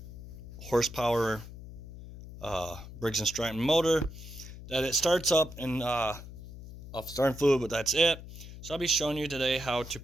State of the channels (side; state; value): left; noise; hum, 14 dB below the sound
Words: horsepower Briggs & Stratton motor that it starts up and off starting fluid, but that's it. So I'll be showing you today how to